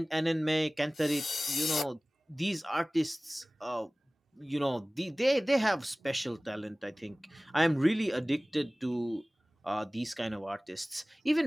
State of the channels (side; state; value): both; normal; correlation 0.98